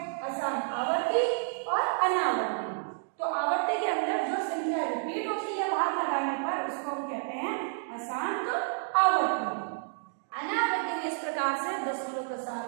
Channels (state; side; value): silent; left; digital silence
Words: असार आवर्ती और अनावर्ती। तो आवर्ती के अंदर जो संख्या रिपीट होती है भाग लगाने पर उसको हम कहते हैं अशांत आवर्ती। अनावर्ती में इस प्रकार से दशमलव प्रसार